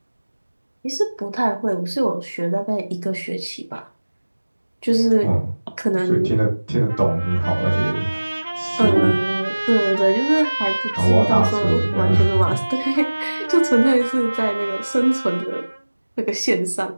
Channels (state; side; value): inverted; both; correlation -1.00